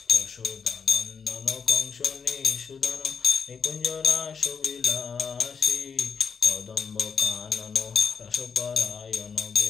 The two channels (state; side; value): quieter; right; 6.0 dB